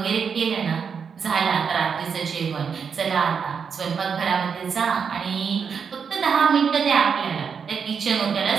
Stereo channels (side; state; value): left; quieter; 6.4 dB